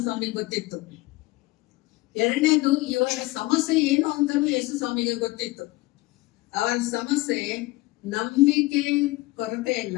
ಸ್ವಾಮಿಗೆ ಗೊತ್ತಿತ್ತು. ಎರಡನೇದು ಇವರ ಸಮಸ್ಯೆ ಏನು ಅಂತಲೂ ಯೇಸು ಸ್ವಾಮಿಗೆ ಗೊತ್ತಿತ್ತು. ಅವರ ಸಮಸ್ಯೆ ನಂಬಿಕೆ ಕೊರತೆ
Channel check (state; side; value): quieter; right; 20.7 dB